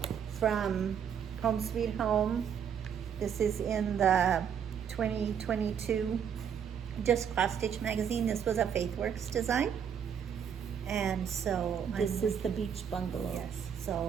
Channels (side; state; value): left; quieter; 8.0 dB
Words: from Home Sweet Home. This is in the 2022 Just Cross Stitch magazine. This was a FaithWorks design. And so This is the beach bungalow. yes,